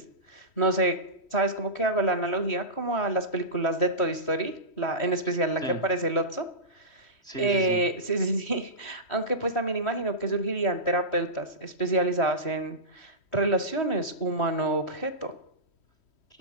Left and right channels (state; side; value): late; right; 3.1 ms